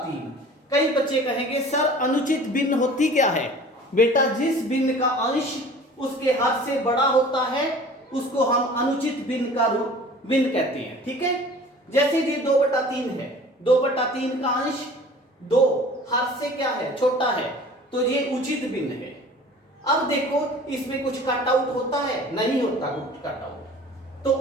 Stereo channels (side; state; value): both; normal; correlation 0.45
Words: कई बच्चे कहेंगे सर अनुचित भिन्न होती क्या है। बेटा जिस भिन्न का अंश उसके हद से बड़ा होता है उसको हम अनुचित भिन्न का भिन्न कहते हैं, ठीक है। जैसे ये 2/3 है, 2/3 का अंश 2 हद से क्या है, छोटा है, तो ये उचित भिन्न है। अब देखो इसमें कुछ कट आउट होता है, नहीं होता कुछ कट आउट। तो